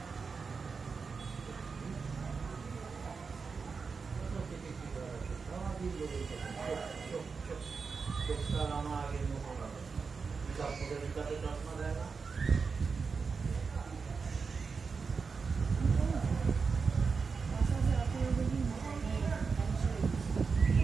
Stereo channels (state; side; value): quieter; left; 5.1 dB